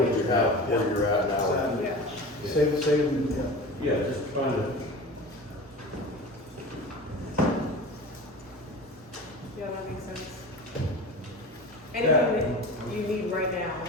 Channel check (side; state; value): both; normal; correlation 0.33